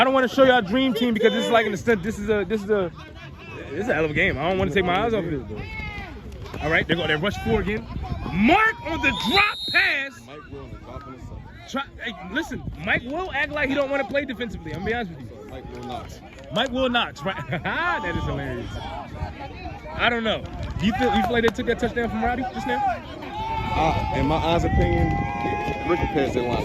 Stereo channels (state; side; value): identical; both; correlation 1.00